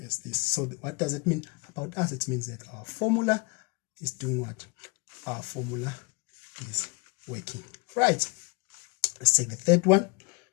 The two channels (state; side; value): quieter; right; 28.7 dB